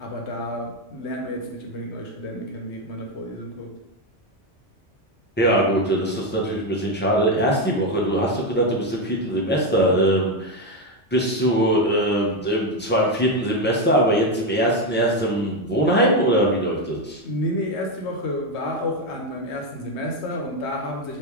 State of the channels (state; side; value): normal; both; correlation 0.08